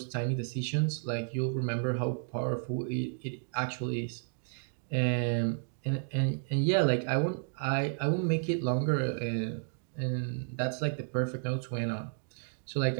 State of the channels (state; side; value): silent; left; digital silence